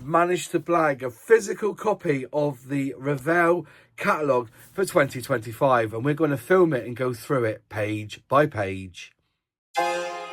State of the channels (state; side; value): identical; both; correlation 1.00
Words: managed to blag a physical copy of the Revell Catalogue for 2025, and we're going to film it and go through it page by page.